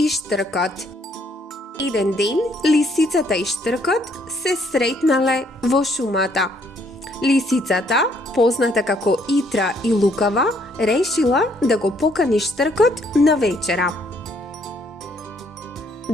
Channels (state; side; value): normal; both; correlation 0.67